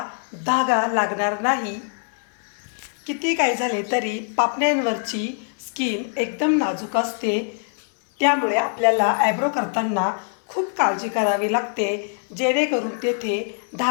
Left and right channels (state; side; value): silent; right; 62 dB below the other